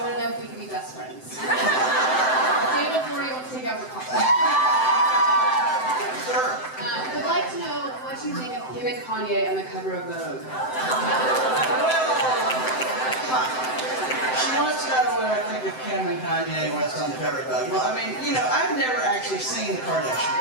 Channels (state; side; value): late; right; 7.8 ms